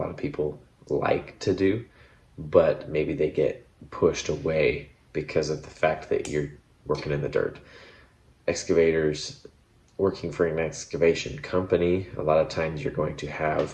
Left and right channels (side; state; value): both; identical; correlation 1.00